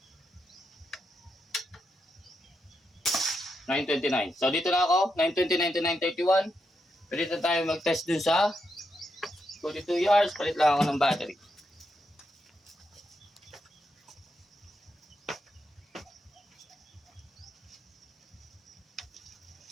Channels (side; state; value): both; normal; correlation 0.83